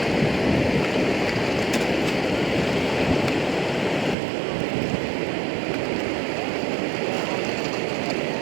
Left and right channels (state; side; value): drops out; left; at 4.2 s